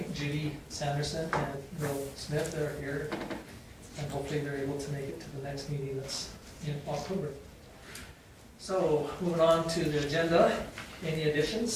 Judy Sanderson and Bill Smith, they're here. And hopefully they're able to make it to the next meeting that's in October. So, moving on to the agenda, any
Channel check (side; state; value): both; identical; correlation 1.00